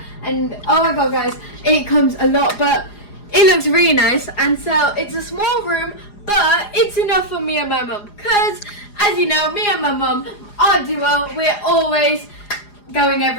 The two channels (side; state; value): right; late; 4.9 ms